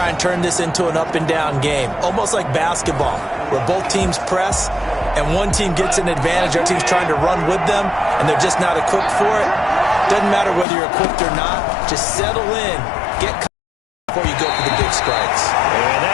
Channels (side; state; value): right; drops out; at 10.7 s